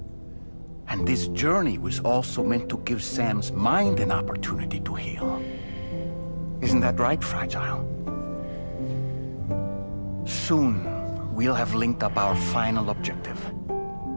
And this journey was also meant to give Sam's mind an opportunity to heal. Isn't that right, Fragile? Soon, we'll have linked up our final objective.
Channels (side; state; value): both; inverted; correlation -1.00